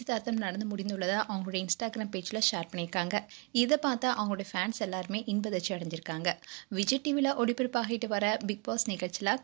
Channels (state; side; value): quieter; left; 32.0 dB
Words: நடந்து முடிந்துள்ளதை அவங்களுடைய இன்ஸ்டாகிராம் பேஜில் ஷேர் பண்ணியிருக்காங்க. இதை பார்த்தா அவங்களுடைய ஃபேன்ஸ் எல்லாருமே இன்பதிர்ச்சி அடைஞ்சிருக்காங்க. விஜய் டிவியில் ஒளிபரப்பாகிட்டு வர பிக் பாஸ் நிகழ்ச்சியில்